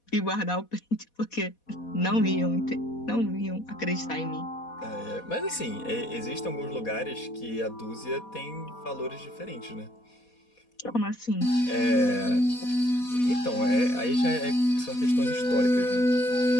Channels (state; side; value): late; right; 4.2 ms